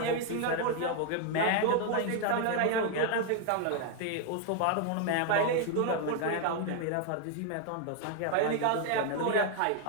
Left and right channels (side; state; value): both; different; correlation 0.00